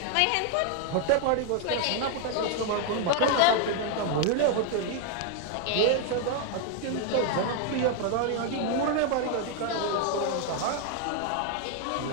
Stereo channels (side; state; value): both; different; correlation 0.01